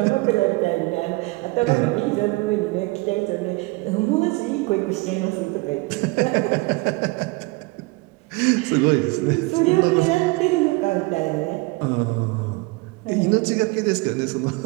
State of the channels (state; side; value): quieter; left; 24.5 dB